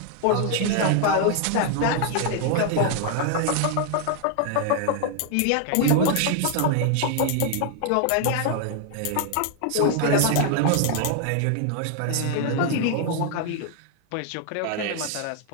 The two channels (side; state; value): both; different; correlation 0.00